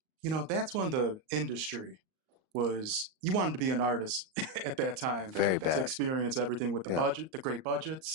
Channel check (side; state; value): left; late; 38 ms